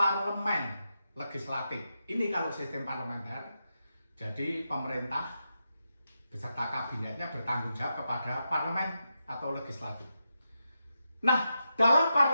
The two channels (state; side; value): inverted; both; correlation -0.87